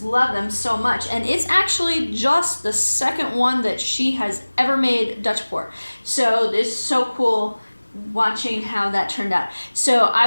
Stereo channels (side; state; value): both; inverted; correlation -1.00